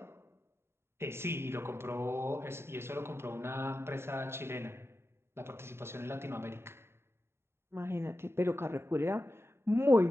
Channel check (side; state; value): left; late; 0.12 ms